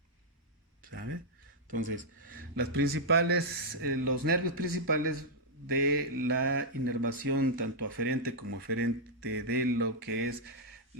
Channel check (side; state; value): both; normal; correlation -0.06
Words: ¿sabe? Entonces, los nervios principales de la inervación, tanto aferente como eferente de lo que es